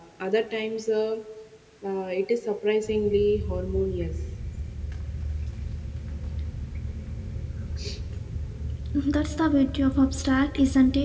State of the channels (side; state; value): both; identical; correlation 1.00